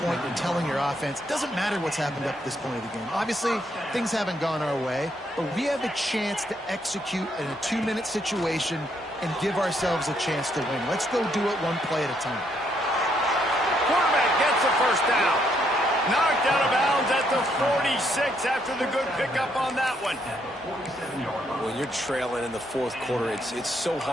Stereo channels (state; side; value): normal; both; correlation 0.73